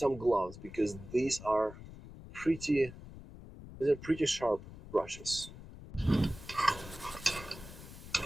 gloves because these are pretty sharp brushes.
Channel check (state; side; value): noise; left; rumble, 15 dB below the sound